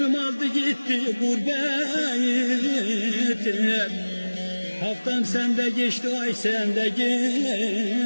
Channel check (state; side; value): inverted; both; correlation -1.00